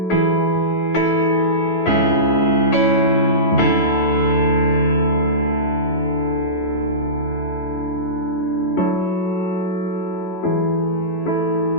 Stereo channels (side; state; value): right; late; 11 ms